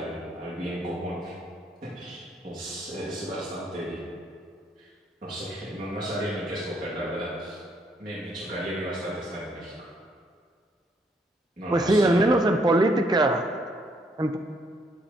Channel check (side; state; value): both; normal; correlation 0.70